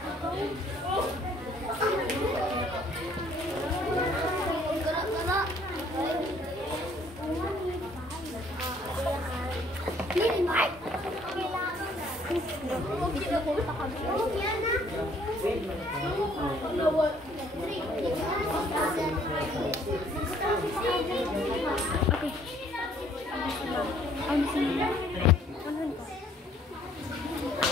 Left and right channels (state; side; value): normal; both; correlation 0.61